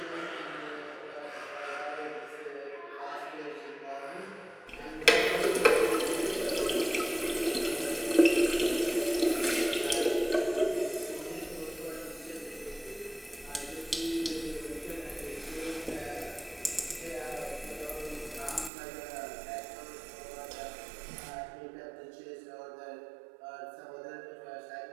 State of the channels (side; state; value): left; drops out; at 18.7 s